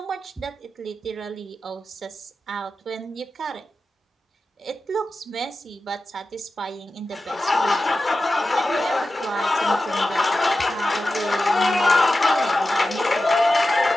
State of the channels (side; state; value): both; normal; correlation 0.93